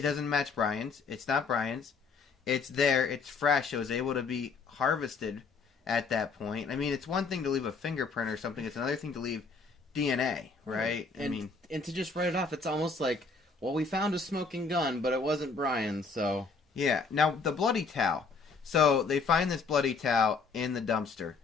doesn't match Bryon's. It's not Bryon's. It's there. It's fresh. It was able to be harvested at that point. I mean, it's one thing to leave a fingerprint or something. It's another thing to leave DNA, right? And to just write it off, it's almost like, well, we found a smoking gun, but it wasn't Bryon, so... Yeah. Now, the bloody towel. So, they find this bloody towel in the dumpster.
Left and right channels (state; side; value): quieter; right; 4.6 dB